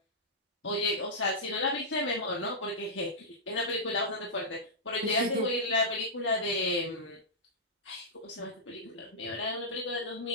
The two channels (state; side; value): normal; both; correlation -0.12